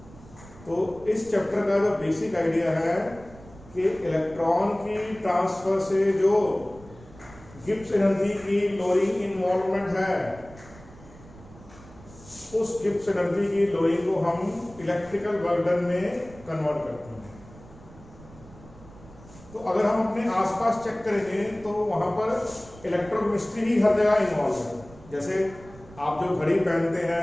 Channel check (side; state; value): right; noise; rumble, 21 dB below the sound